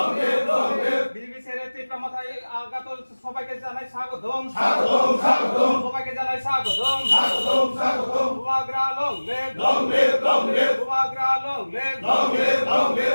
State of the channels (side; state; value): both; inverted; correlation -1.00